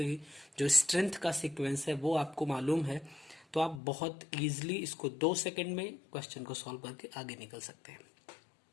जो स्ट्रेंथ का सीक्वेंस है वो आपको मालूम है, तो आप बहुत इजीली इसको 2 सेकंड में क्वेश्चन को सॉल्व करके आगे निकल सकते हैं।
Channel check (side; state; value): right; drops out; at 3.8 s